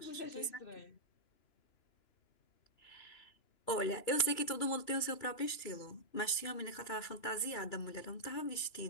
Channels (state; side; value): late; right; 2.9 ms